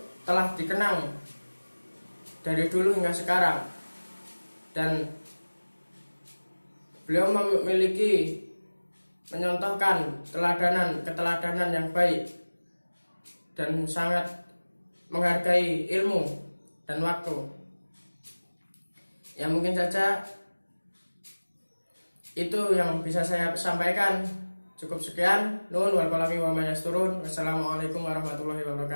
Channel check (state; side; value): inverted; both; correlation -1.00